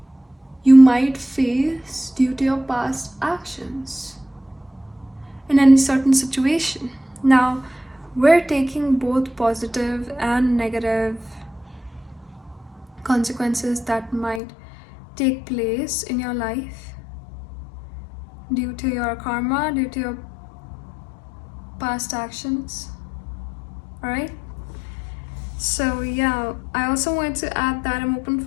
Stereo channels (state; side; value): drops out; right; at 14.4 s